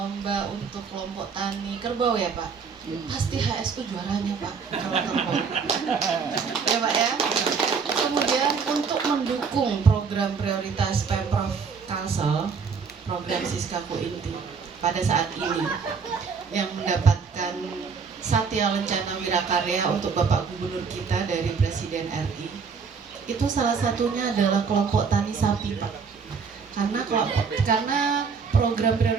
untuk kelompok tani kerbau ya Pak? Pasti HSU juaranya Pak, kalau kerbau. Ya Pak ya. Kemudian untuk mendukung program prioritas Pemprov Kalsel, program Siskaku Inti pada saat ini yang mendapatkan Satya Lencana Wirakarya untuk Bapak Gubernur kita dari Presiden RI, itu salah satunya adalah kelompok tani sapi Pak. Karena program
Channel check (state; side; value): quieter; left; 5.6 dB